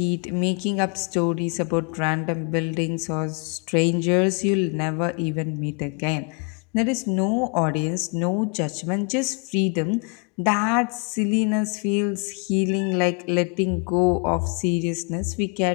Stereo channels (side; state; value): right; quieter; 35.7 dB